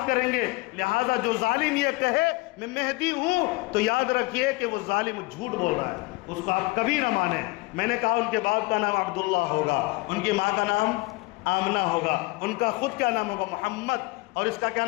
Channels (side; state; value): right; quieter; 23.5 dB